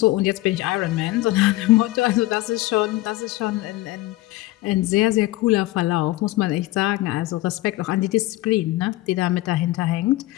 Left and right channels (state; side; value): quieter; right; 17.9 dB